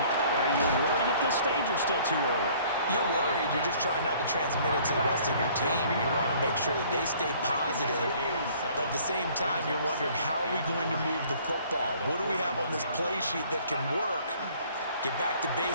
you worried at this stage or still too early? You're worried. You're just trying not to transmit it to the rest of your team. You want to make sure that they stay positive, but at the same time, you're wondering, how are we going to move the football? What do we have on this play sheet that can work? Get back to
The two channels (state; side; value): inverted; both; correlation -0.56